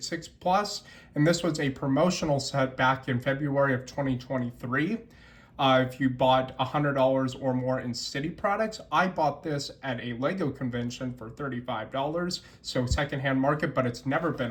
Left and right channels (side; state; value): both; identical; correlation 1.00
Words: and this was a promotional set back in February of 2023. If you bought $100 or more in City products, I bought this at a Lego convention for $35, so secondhand market, but it's never been